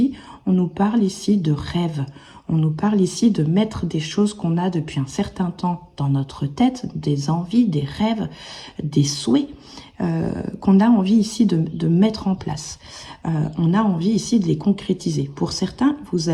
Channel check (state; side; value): identical; both; correlation 1.00